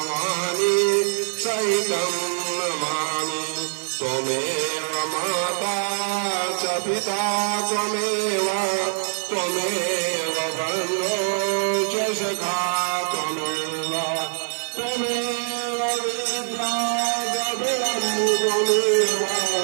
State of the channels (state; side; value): silent; left; digital silence